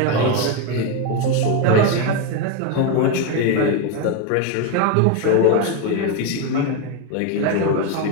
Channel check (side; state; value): both; different; correlation 0.02